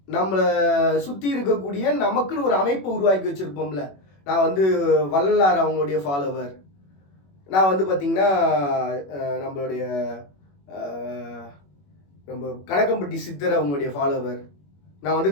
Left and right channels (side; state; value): right; late; 21 ms